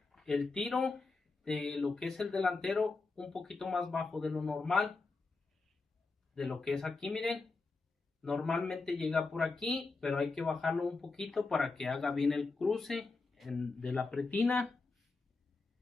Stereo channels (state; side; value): quieter; right; 3.9 dB